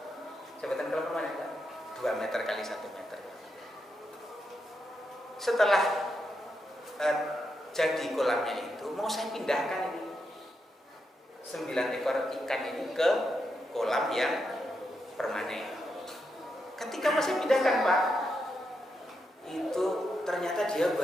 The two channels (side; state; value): both; normal; correlation 0.84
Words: Saya buatkan kolam permanen 2 meter kali 1 meter. Setelah jadi kolamnya itu, mau saya pindahkan ini 9 ekor ikan ini ke kolam yang permanen. Ketika masih pindahkan Pak, itu ternyata dia